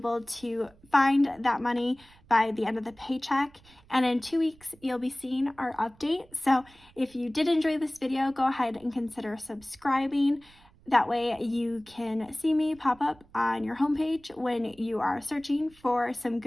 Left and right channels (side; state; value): right; noise; rumble, 27 dB below the sound